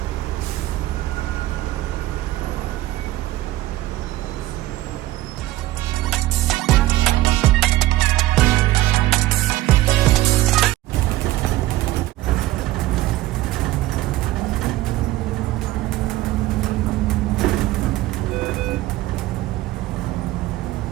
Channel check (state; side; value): quieter; left; 16.5 dB